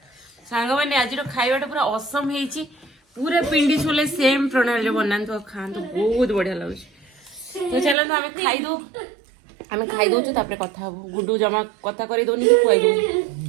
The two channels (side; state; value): left; drops out; at 8.0 s